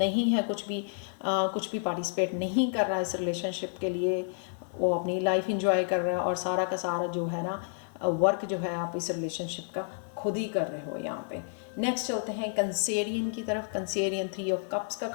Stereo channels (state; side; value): silent; right; digital silence